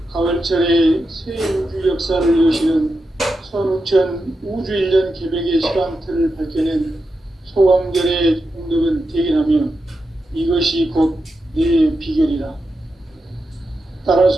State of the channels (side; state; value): both; normal; correlation 0.88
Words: 가을철에 새 우주 역사를 여시는 선우천 우주 1년 개백의 시간틀을 밝혀낸 소강절의 공덕은 대견하며 이것이 곧 내 비결이다.